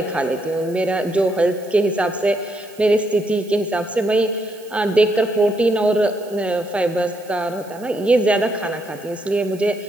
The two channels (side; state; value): right; noise; hiss, 24 dB below the sound